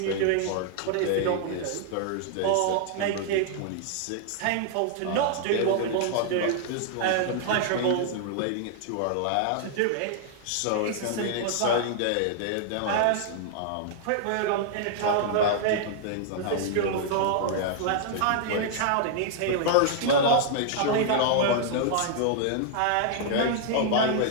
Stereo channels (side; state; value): both; different; correlation -0.01